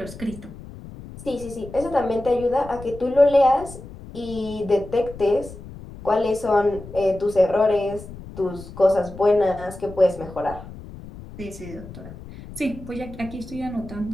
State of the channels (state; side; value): noise; left; rumble, 15 dB below the sound